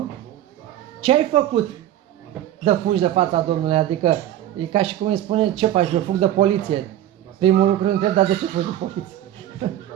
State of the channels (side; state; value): left; quieter; 12.3 dB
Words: Ce ai făcut de fugi de fața Domnului? Adică e ca și cum îi spune, ce faci, eu fug de poliție. Primul lucru întreb, dar de ce fugi de poliție?